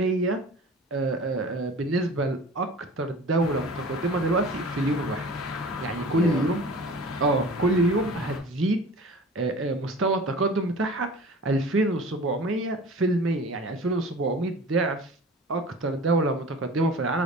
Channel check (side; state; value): both; normal; correlation 0.41